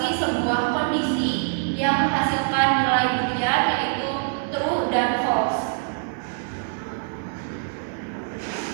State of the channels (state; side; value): silent; left; digital silence